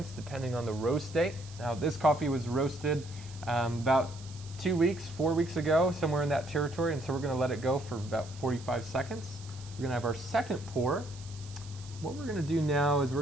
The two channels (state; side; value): noise; right; hiss, 19 dB below the sound